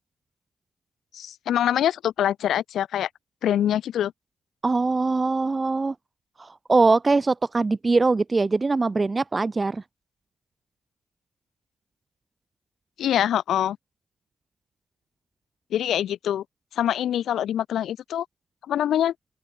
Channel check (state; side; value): normal; both; correlation 0.78